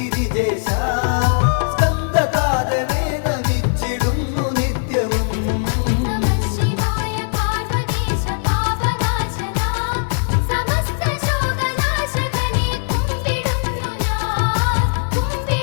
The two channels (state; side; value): silent; right; digital silence